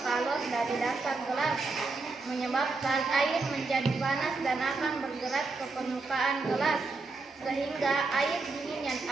kalor dari dasar gelas, menyebabkan air menjadi panas dan akan bergerak ke permukaan gelas, sehingga air dingin yang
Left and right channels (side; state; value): left; quieter; 3.8 dB